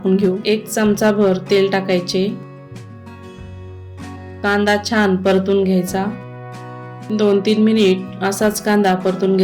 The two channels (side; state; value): both; identical; correlation 1.00